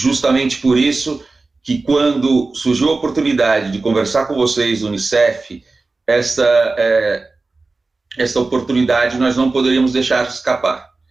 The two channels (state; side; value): quieter; left; 3.6 dB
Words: por isso que quando surgiu a oportunidade de conversar com vocês do Unicef, esta oportunidade nós não poderíamos deixar escapar.